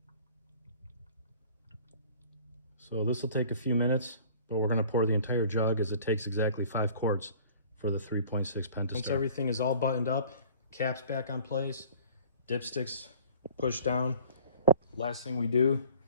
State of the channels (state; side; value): inverted; both; correlation -0.49